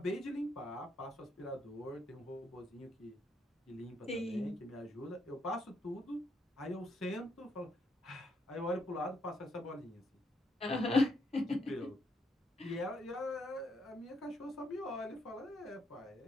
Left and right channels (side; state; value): both; normal; correlation 0.76